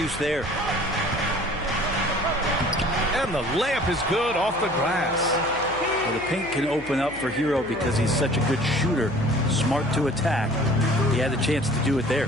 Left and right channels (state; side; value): noise; left; hum, 18 dB below the sound